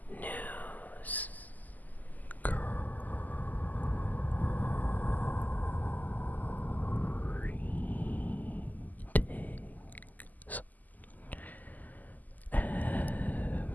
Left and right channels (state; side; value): late; right; 0.082 ms